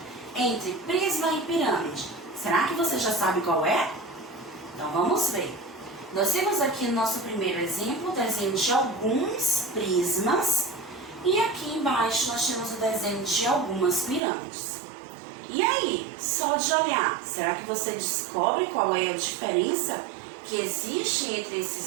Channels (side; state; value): left; drops out; at 14.2 s